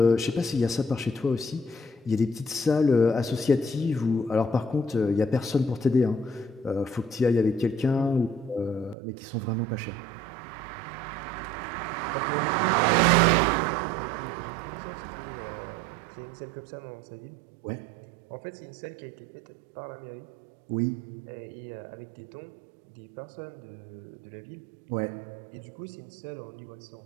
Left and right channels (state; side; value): drops out; left; at 9.0 s